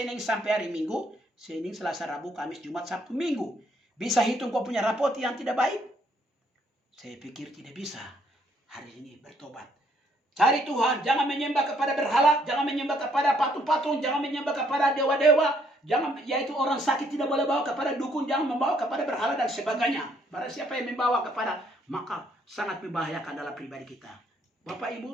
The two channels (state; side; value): normal; both; correlation 0.69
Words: sampai hari Minggu. Senin, Selasa, Rabu, Kamis, Jumat, Sabtu, Minggu. Bisa hitung kau punya rapot yang tidak baik? Saya pikir tidak bisa. Hari ini bertobat. Cari Tuhan. Jangan menyembah kepada berhala. Jangan menyembah kepada patung-patung. Jangan menyembah kepada dewa-dewa. Jangan, yaitu orang sakit tidak boleh bawa kepada dukun. Jangan membawa kepada berhala dan sebagainya. Barang siapa yang membawa kepada, maka sangat membahayakan dalam pribadi kita. Bapak,